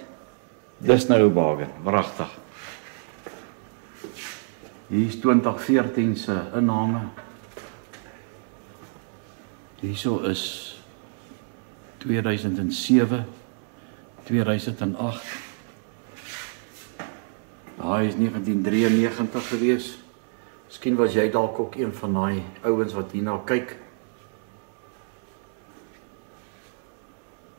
Dis nou 'n bargain, wragtig. Hier is 2014 se inname. Hierso is 2007, 2008. Daai is 1993 gewees. Miskien was jy dalk ook een van daai ouens wat hierna kyk.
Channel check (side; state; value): left; silent; 59 dB below the other